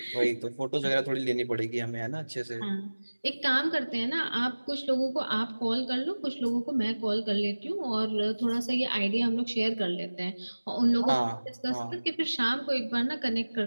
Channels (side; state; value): both; inverted; correlation -1.00